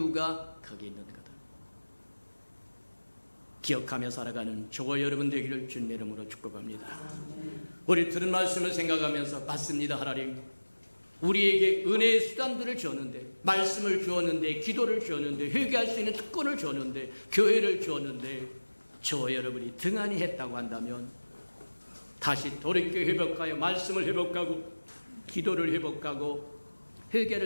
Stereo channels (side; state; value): both; inverted; correlation -1.00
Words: 거기 있는 거다. 기억하며 살아가는 저와 여러분 되기를 주님의 이름으로 축복합니다. 우리 들은 말씀을 생각하면서, 맞습니다 하나님, 우리에게 은혜의 수단들을 주었는데, 말씀을 주었는데, 기도를 주었는데, 회개할 수 있는 특권을 주었는데, 교회를 주었는데, 저와 여러분이 등한히 했다고 한다면 다시 돌이켜 회복하여 말씀을 회복하고, 기도를 회복하고,